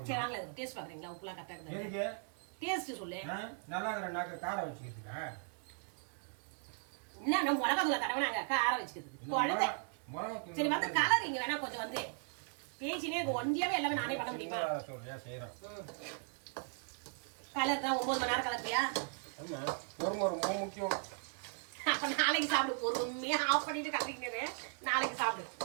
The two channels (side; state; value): left; silent; 53 dB below the other